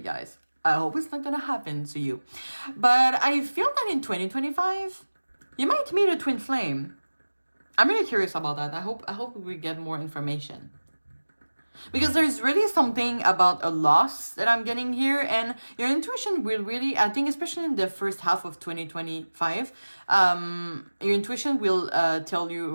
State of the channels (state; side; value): inverted; both; correlation -1.00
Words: I hope it's not gonna happen to you. But I feel that in 2025, you might meet a twin flame. I'm really curious about that. I hope we get more information. Because there's really something about a loss that I'm getting here. And your intuition will really, I think, especially in the first half of 2025, your intuition will tell